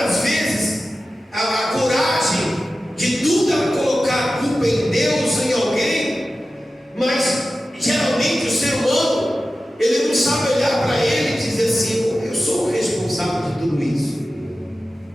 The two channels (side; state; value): both; normal; correlation 0.94